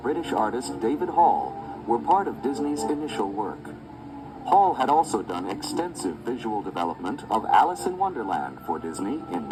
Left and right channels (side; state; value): both; identical; correlation 1.00